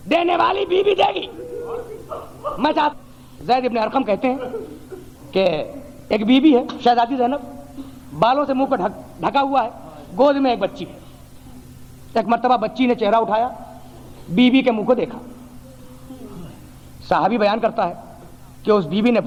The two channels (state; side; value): identical; both; correlation 1.00